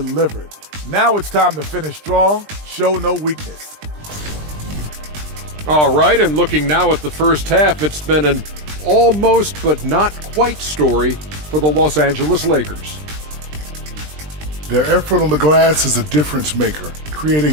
Now it's time to finish strong, show no weakness. All right, and looking now at the first half, it's been an almost but not quite story for the Los Angeles Lakers. Their effort on the glass is a difference maker,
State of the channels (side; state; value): left; late; 20 ms